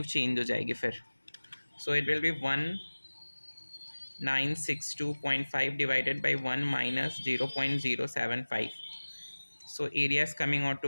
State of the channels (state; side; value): inverted; both; correlation -1.00